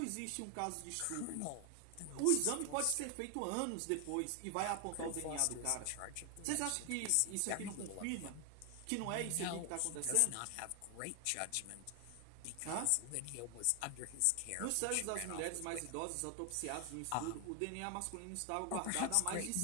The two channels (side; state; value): both; different; correlation 0.00